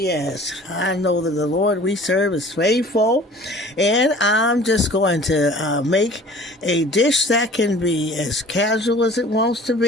I know that the Lord we serve is faithful. And I'm just going to make a dish that can be as casual as it wants to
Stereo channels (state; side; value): normal; both; correlation 0.47